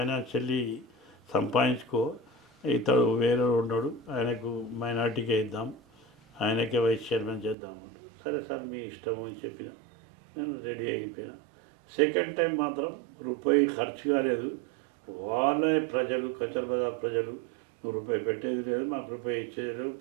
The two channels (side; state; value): left; drops out; at 7.6 s